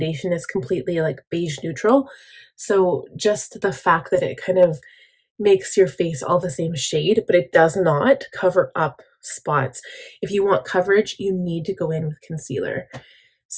is completely like beige neutral. So just the fact that it kind of makes your face all the same shade, but it does not cover up spots. If you want coverage, you need to go in with concealer.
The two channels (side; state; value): both; identical; correlation 1.00